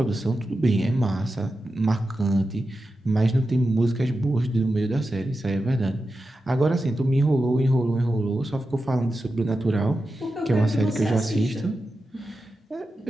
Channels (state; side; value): normal; both; correlation 0.91